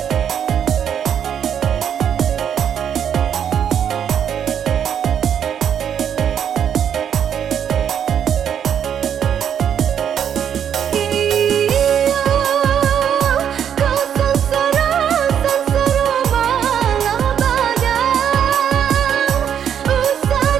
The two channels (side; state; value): left; quieter; 8.8 dB